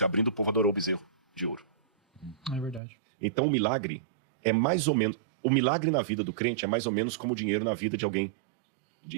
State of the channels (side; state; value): left; drops out; at 2.8 s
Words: abrindo, o povo adorou o bezerro de ouro. É verdade. Então o milagre é mais ou menos... O milagre na vida do crente é mais ou menos como o dinheiro na vida de alguém